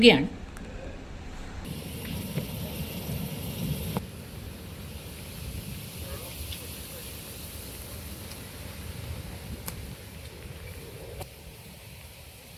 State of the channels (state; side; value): identical; both; correlation 1.00